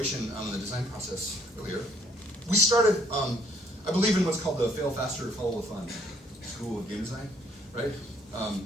on the design process earlier. We started. I believe in what's called the fail faster, follow the fun school of game design, right?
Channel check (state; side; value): normal; both; correlation 0.64